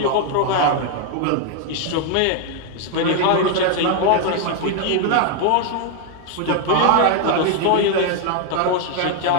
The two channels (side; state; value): both; different; correlation 0.00